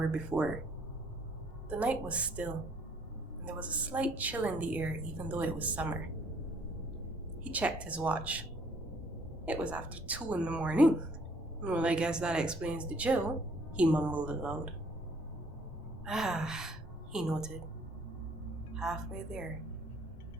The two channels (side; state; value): both; normal; correlation 0.61